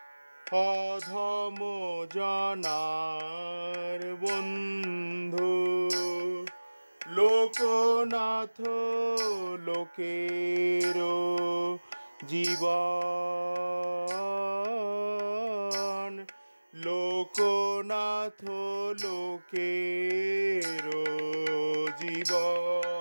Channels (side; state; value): both; inverted; correlation -1.00